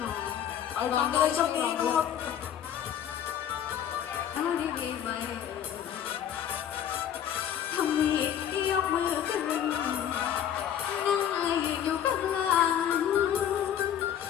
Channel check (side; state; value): right; quieter; 9.8 dB